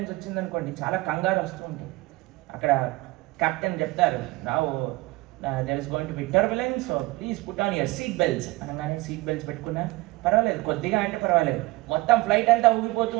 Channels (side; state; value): left; quieter; 22.0 dB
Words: వచ్చిందనుకోండి, చాలా కంగారు వస్తూ ఉంటుంది. అక్కడ కెప్టెన్ చెప్తారు, now there is going to be turbulence, so please put on your seat belts అనగానే సీట్ బెల్ట్స్ పెట్టుకున్నా పర్వాలేదు, కొద్దిగా అంటే పర్వాలేదు. మొత్తం ఫ్లైట్ అంతా ఊగిపోతూ